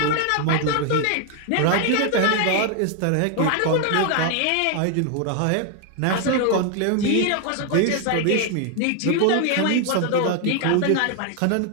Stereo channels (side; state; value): both; different; correlation 0.00